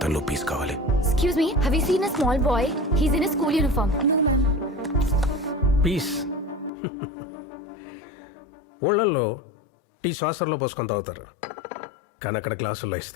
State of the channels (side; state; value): right; drops out; at 6.7 s